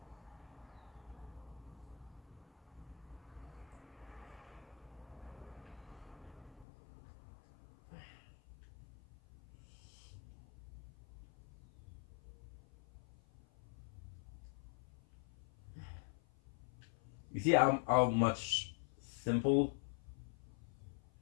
You see how much simple,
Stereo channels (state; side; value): drops out; right; at 6.7 s